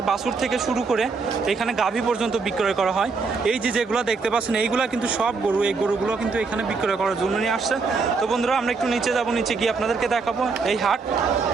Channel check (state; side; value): quieter; left; 4.5 dB